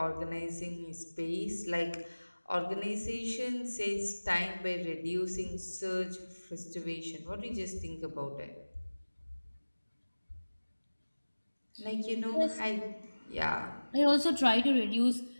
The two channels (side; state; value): both; inverted; correlation -1.00